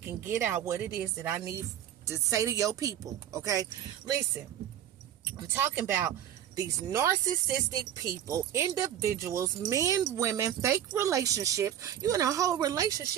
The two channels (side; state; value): left; quieter; 10.6 dB